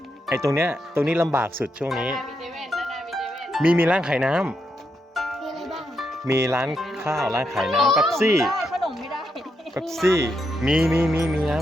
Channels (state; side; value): normal; both; correlation 0.82